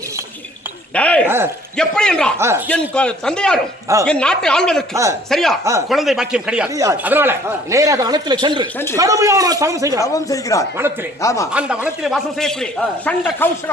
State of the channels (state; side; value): normal; both; correlation 0.56